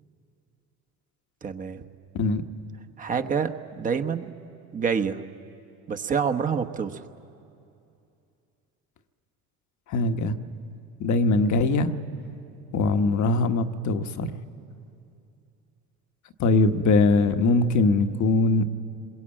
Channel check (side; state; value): both; normal; correlation 0.29